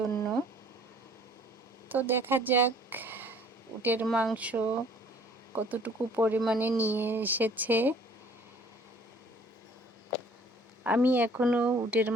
তো দেখা যাক উটের মাংস কতটুকু পরিমাণে নিয়ে এসেছে। আমি এখনো উটের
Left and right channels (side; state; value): both; normal; correlation 0.55